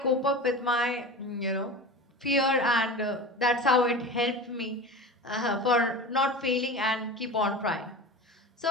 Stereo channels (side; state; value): both; normal; correlation 0.31